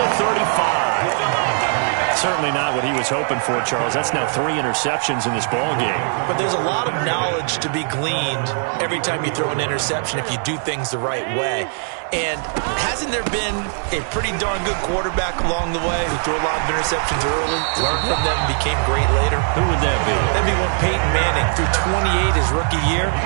35. Certainly not what he was hoping for, Charles. That's now 3 interceptions in this ball game. But there's a lot of knowledge to be gleaned every time you throw an interception if you do things the right way. And hasn't there been a pretty darn good quarterback along the way who threw a lot of interceptions early, learned from them, and became great later? Who would that be? That'd be one Peyton Manning. Threw 28 his rookie year.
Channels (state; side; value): silent; left; 56 dB below the other